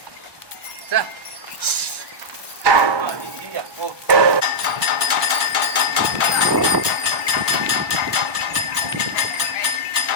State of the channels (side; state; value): left; late; 1.2 ms